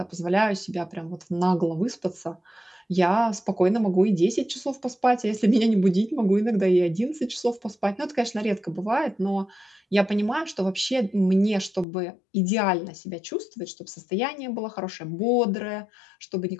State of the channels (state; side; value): drops out; right; at 11.9 s